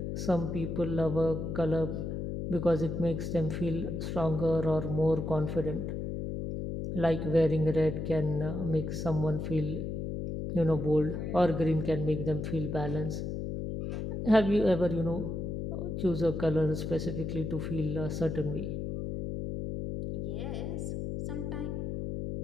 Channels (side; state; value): left; noise; hum, 4 dB below the sound